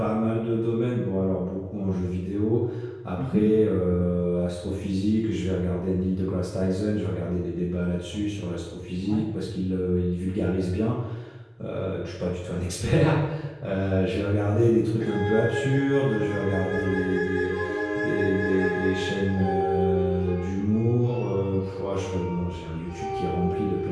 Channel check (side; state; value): both; identical; correlation 1.00